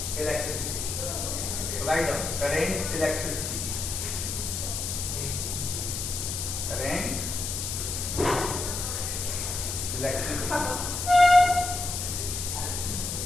electricity. Write down current, electricity. Current, electricity.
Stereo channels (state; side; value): noise; left; hiss, 3 dB below the sound